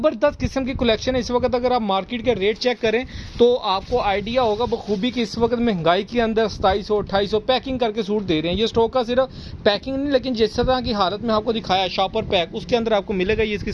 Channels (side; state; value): both; identical; correlation 1.00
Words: किस्म की कलेक्शन है इस वक्त। अगर आप मार्केट के रेट चेक करें तो आपको आइडिया होगा बखूबी कि इस वक्त महंगाई के अंदर 2700-2800 पैकिंग करके सूट दे रहे हैं। ये स्टॉक का सिर्फ पैकिंग नहीं, लेकिन जिस तरह की हालत में आपको दिखाया शॉपर पैक, उसके अंदर आपको मिलेगा। ये इसकी